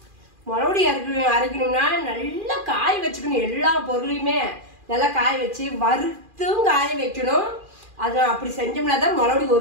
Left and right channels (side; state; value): left; late; 2.4 ms